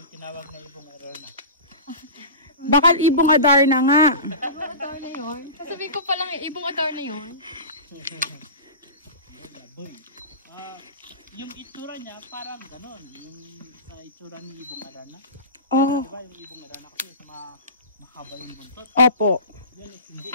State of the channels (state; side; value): inverted; both; correlation -0.31